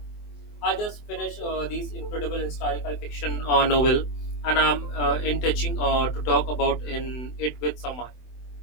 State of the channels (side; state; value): right; late; 24 ms